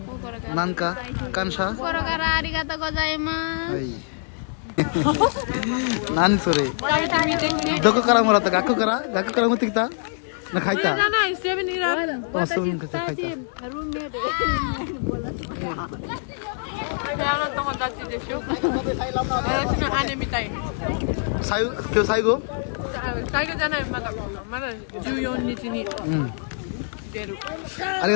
nanka kansha kokoro kara arigatou gozaimasu hai nani sore doko kara moratta gakko kara motte kita না খাইতা না 7-Eleven অসম খেতে খাইতা কেউ সাইগো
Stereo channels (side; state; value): right; silent; digital silence